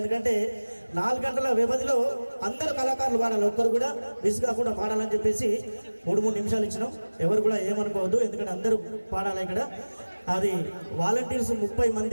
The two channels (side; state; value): both; inverted; correlation -1.00